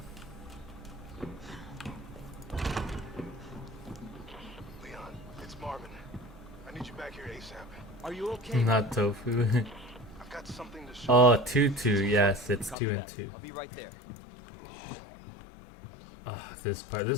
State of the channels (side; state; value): right; drops out; at 12.8 s